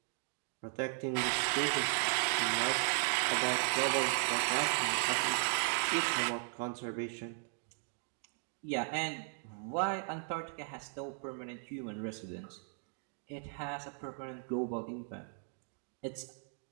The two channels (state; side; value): silent; left; 53 dB below the other